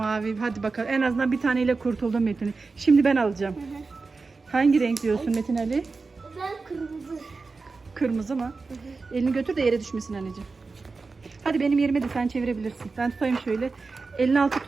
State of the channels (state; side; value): quieter; left; 4.1 dB